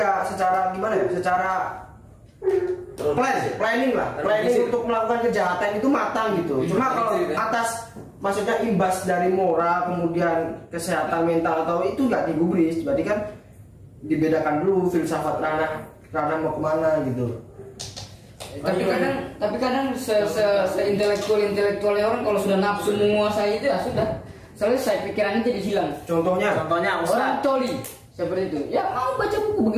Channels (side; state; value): both; identical; correlation 1.00